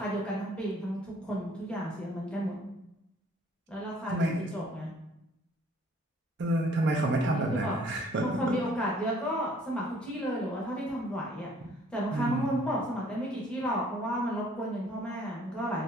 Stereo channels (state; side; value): normal; both; correlation 0.59